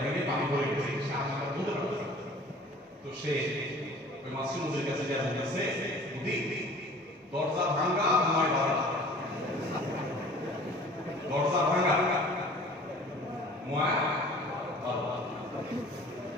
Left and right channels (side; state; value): both; normal; correlation 0.47